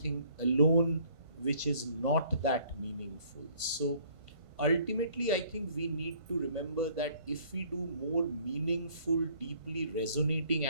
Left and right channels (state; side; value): late; left; 1.5 ms